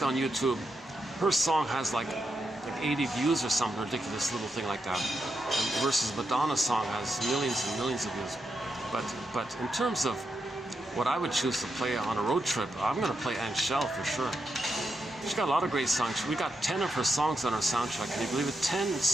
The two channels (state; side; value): normal; both; correlation 0.84